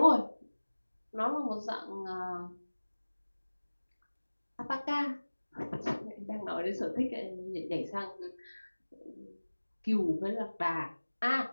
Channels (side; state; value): both; inverted; correlation -1.00